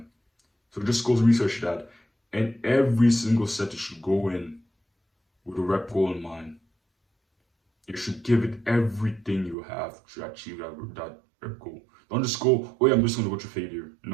So just go research that, and every single set you should go in with a rep goal in mind. You should give it everything you have to achieve that rep goal. Don't just go, oh yeah, I'm just gonna go to failure.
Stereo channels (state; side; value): drops out; left; at 9.6 s